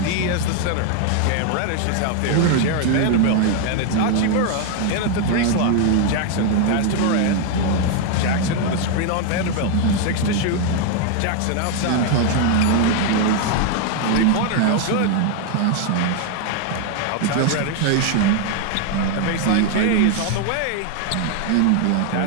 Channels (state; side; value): different; both; correlation 0.01